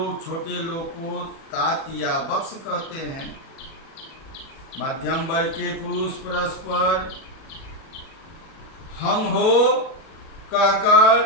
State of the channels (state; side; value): late; right; 37 ms